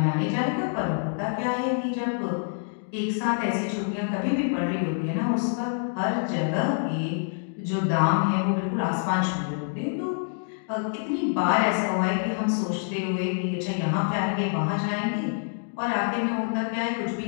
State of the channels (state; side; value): silent; right; digital silence